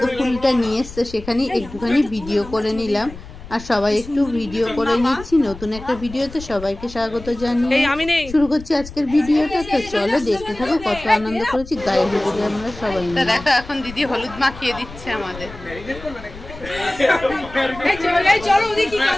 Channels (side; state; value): left; noise; rumble, 15 dB below the sound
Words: ফুলটা নিয়ে এসছে, সেখানে একটুখানি ভিডিও করে নিলাম। আর সবাই একটু ভিডিও করে নিচ্ছি। নতুন একটা ভিডিওতে সবাইকে স্বাগত জানিয়ে শুরু করছি আজকের ভিডিওটা। তো চলো দেখতে থাকো কত আনন্দ করেছি গায়ে হলুদে আমরা সবাই। দেখো এখন দিদি হলুদ মাখিয়ে দিচ্ছে আমাদের।